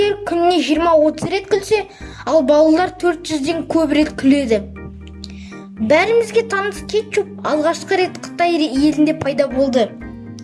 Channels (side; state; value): both; identical; correlation 1.00